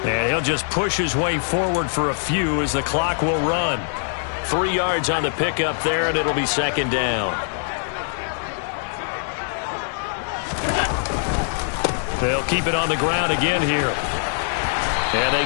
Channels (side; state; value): right; silent; digital silence